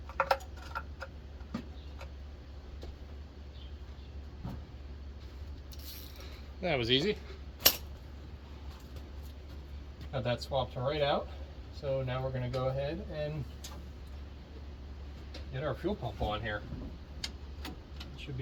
That was easy. Got that swapped right out. So now we're going to go ahead and get our fuel pump on here. It should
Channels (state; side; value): identical; both; correlation 1.00